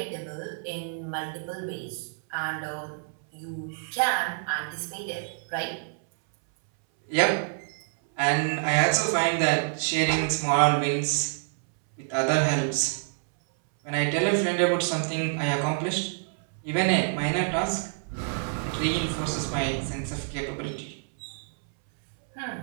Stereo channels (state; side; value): silent; left; 60 dB below the other